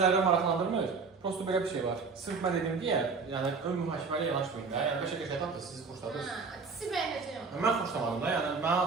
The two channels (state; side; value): quieter; left; 4.8 dB